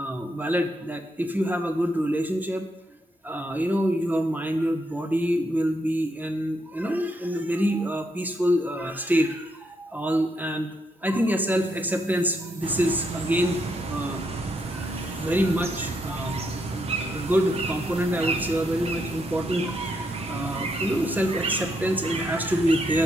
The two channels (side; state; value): both; normal; correlation 0.78